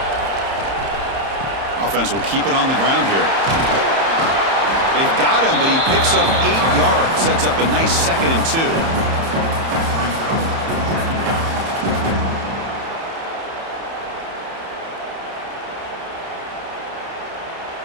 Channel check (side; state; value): left; late; 30 ms